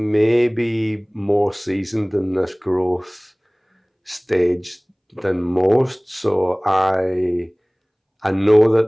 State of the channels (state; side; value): identical; both; correlation 1.00